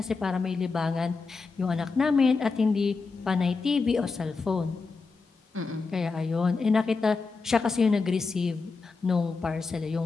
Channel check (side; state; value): right; quieter; 4.4 dB